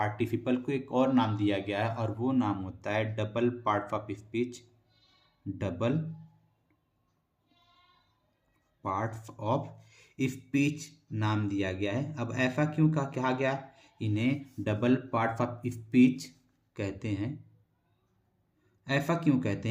को एक और नाम दिया गया है, और वो नाम होता है double part of speech, double parts of speech नाम दिया गया है। अब ऐसा क्यों कहा गया, इन्हें डबल पार्ट्स ऑफ स्पीच कहते हैं। ऐसा क्यों कहते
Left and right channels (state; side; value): identical; both; correlation 1.00